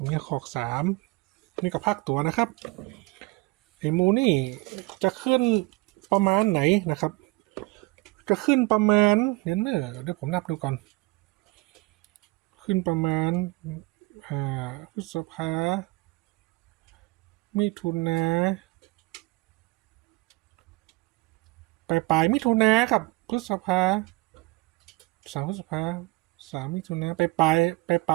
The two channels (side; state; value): left; quieter; 23.3 dB